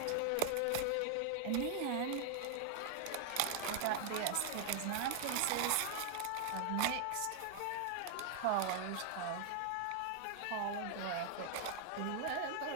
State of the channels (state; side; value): different; both; correlation 0.00